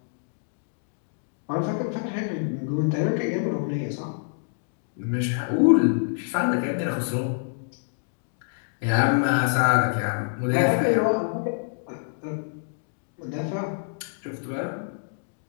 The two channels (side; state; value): right; silent; digital silence